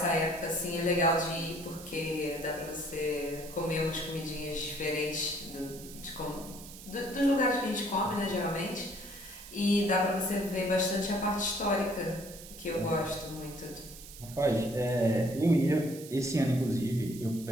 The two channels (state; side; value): noise; right; hiss, 15 dB below the sound